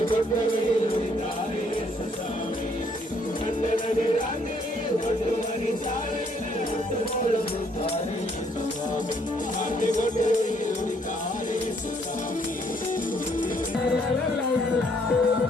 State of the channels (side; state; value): both; normal; correlation 0.67